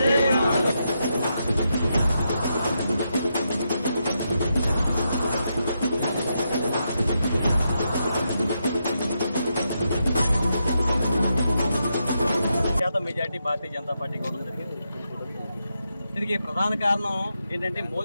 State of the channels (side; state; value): both; inverted; correlation -0.83